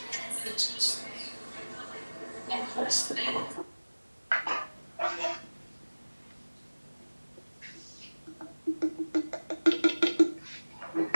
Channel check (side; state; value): both; inverted; correlation -1.00